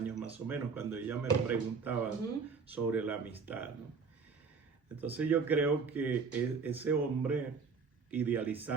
más o menos, cuando ella me preguntaba sobre la amistad, ¿no? Entonces yo creo que ese hombre,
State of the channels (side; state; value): left; quieter; 5.2 dB